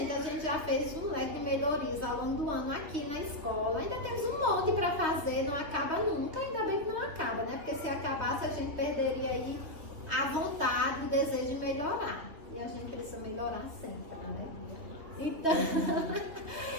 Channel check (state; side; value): late; left; 3.2 ms